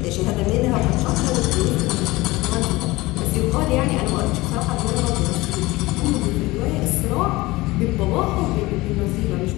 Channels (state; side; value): quieter; right; 20.6 dB